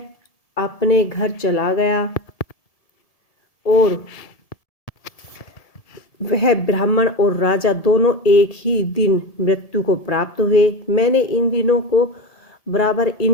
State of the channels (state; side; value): late; right; 1.7 ms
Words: अपने घर चला गया और वह ब्राह्मण और राजा दोनों एक ही दिन मृत्यु को प्राप्त हुए। मैंने इन दिनों को बराबर